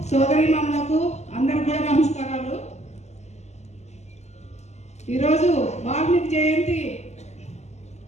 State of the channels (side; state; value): right; late; 0.33 ms